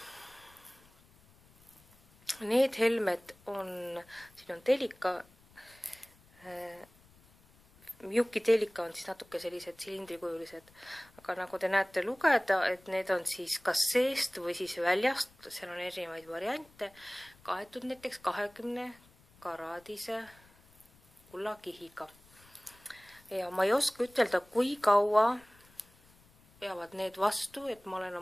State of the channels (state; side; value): noise; left; rumble, 28 dB below the sound